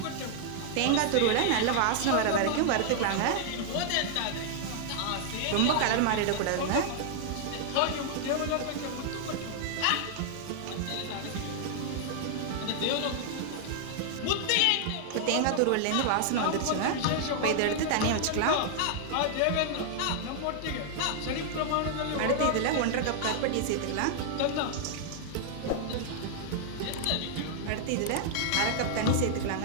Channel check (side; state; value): both; different; correlation 0.00